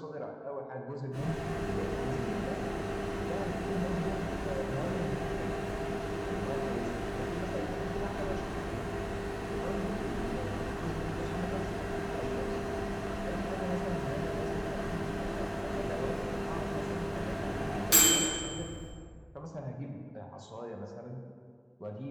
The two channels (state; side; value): identical; both; correlation 1.00